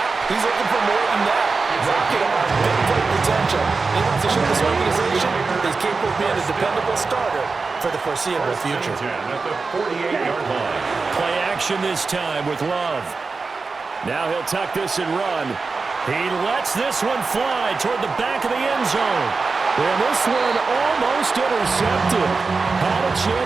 he's looking for more than that. Rocket arm, big play potential. He wants to show this organization he's capable of being a dependable starter for the foreseeable future. At the 48-yard line. Play action this time with Love. Now he'll tuck this and run. He lets this one fly toward the back of the end zone. And this one almost intercepted. Had a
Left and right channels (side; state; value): left; quieter; 4.3 dB